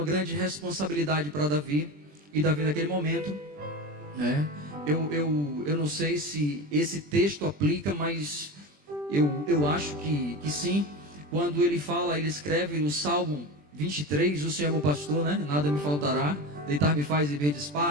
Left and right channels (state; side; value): late; left; 20 ms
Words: grande responsabilidade para Davi, e Davi naquele momento, né, Eu não sei se esse texto aplica, mas eu acho que sim. Quando ele fala, ele escreve no Salmo 23, o Senhor é meu pastor, né? Nada me faltará. Deitar-me faz em verdes